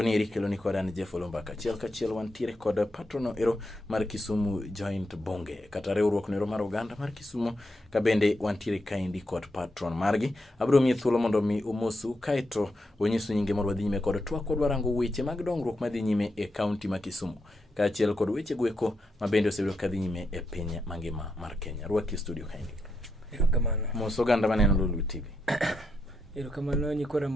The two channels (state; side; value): normal; both; correlation 0.83